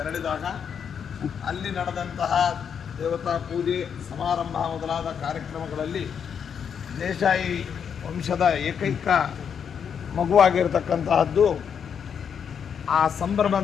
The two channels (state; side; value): quieter; right; 7.4 dB